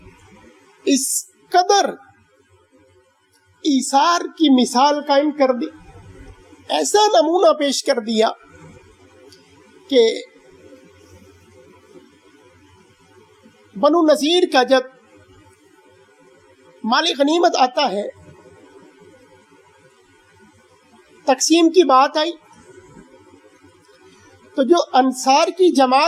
اس قدر ایثار کی مثال قائم کر دی، ایسا نمونہ پیش کر دیا کہ بنو نذیر کا جب مال غنیمت آتا ہے، تقسیم کی بات آئی، تو جو انصار کی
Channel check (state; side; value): identical; both; correlation 1.00